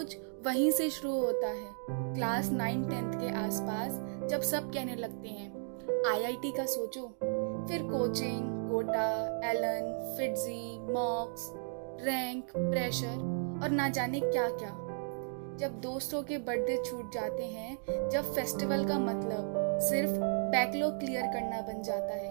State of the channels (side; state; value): left; silent; digital silence